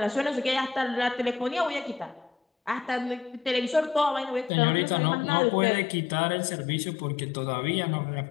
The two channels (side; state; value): right; drops out; at 4.5 s